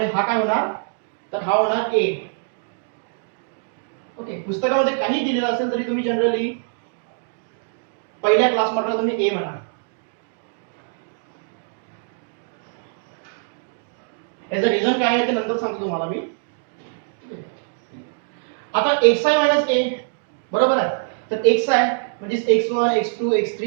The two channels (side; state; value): left; silent; digital silence